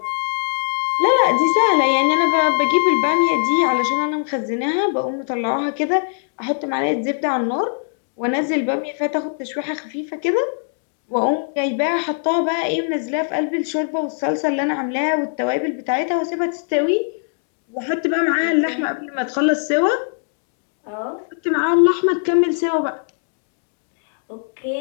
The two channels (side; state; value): right; silent; digital silence